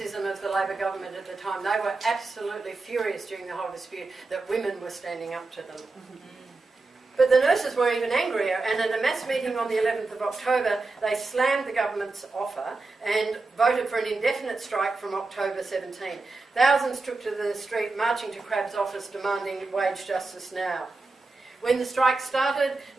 of the Labor government at the time. They were absolutely furious during the whole dispute that women were standing up to them. But the nurses were even angrier, and at a mass meeting on the 11th of October, they slammed the government's offer and voted for an indefinite strike from October 17. Thousands took to the street, marching to Crabb's office, demanding wage justice now. When the strike started,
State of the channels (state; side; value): quieter; left; 3.6 dB